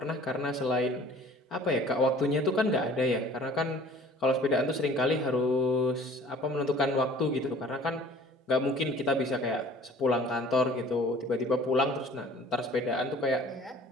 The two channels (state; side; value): normal; both; correlation 0.49